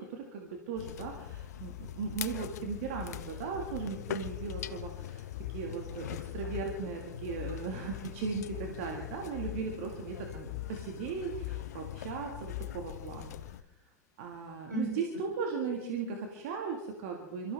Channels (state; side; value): normal; both; correlation -0.12